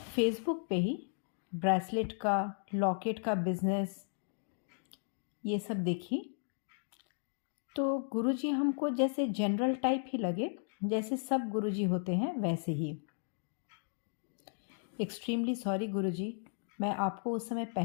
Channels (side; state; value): right; silent; digital silence